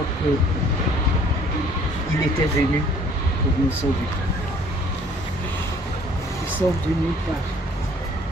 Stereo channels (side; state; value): both; normal; correlation 0.56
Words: qu'il était venu pour nous sauver. Il sort de nulle part.